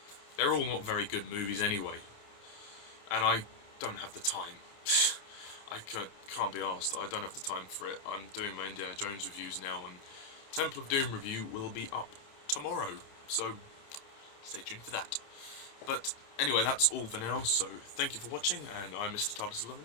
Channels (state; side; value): late; right; 29 ms